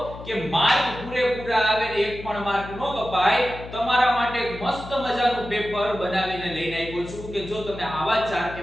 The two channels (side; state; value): left; noise; hum, 13 dB below the sound